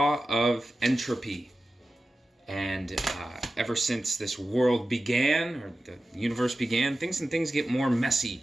of entropy. And ever since this world began, or the universe began, things get more messy.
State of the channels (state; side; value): normal; both; correlation 0.94